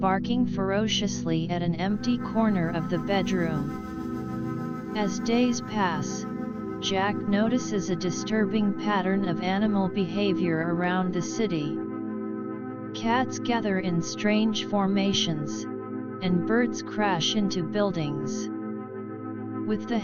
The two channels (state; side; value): identical; both; correlation 1.00